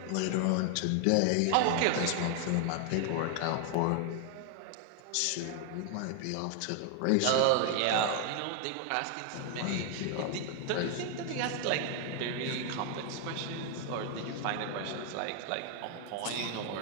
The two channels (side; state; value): both; different; correlation 0.00